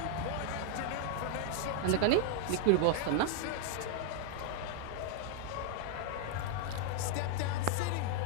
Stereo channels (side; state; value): both; different; correlation 0.00